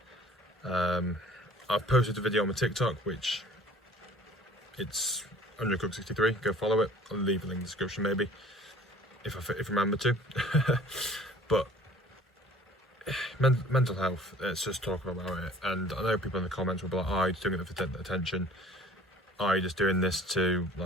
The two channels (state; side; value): normal; both; correlation 0.50